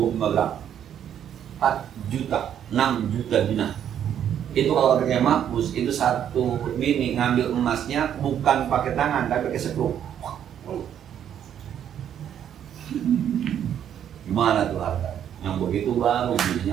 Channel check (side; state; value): left; quieter; 9.6 dB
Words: gram. 4 juta, 6 juta dinar. Itu kalau pakai mahfuz, itu 1 bini ngambil emasnya bukan pakai tangan, tapi pakai sekrup. Gimana tuh harta? Yang begitu baru